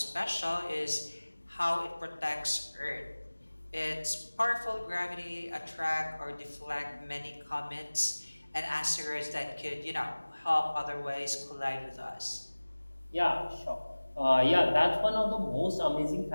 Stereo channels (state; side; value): inverted; both; correlation -1.00